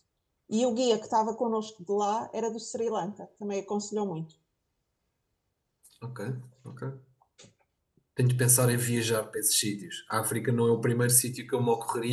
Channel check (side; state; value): both; identical; correlation 1.00